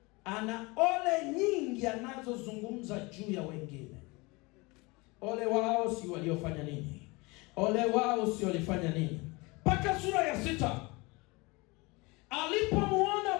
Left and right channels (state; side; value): quieter; right; 25.3 dB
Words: Ana ole nyingi anazozungumza juu ya wengine. Ole wao si waliofanya nini, ole wao si walifanya nini. Mpaka sura ya 6, alipomuona